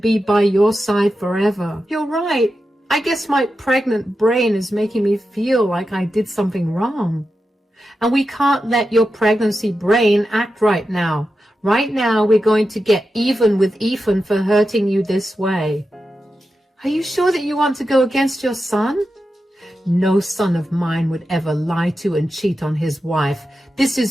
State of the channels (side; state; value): both; normal; correlation 0.90